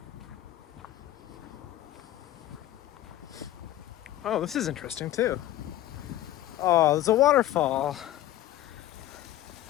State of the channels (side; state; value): right; quieter; 14.1 dB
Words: Oh, this is interesting too. Oh, there's a waterfall.